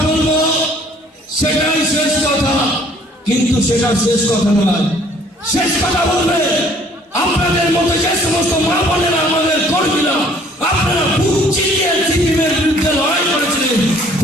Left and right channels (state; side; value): normal; both; correlation 0.58